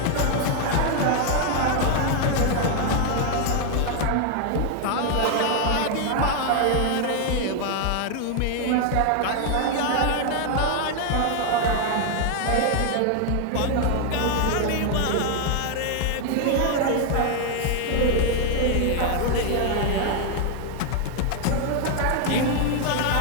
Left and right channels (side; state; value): both; different; correlation 0.00